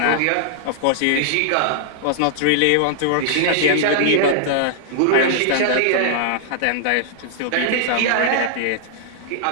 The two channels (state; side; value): different; both; correlation -0.01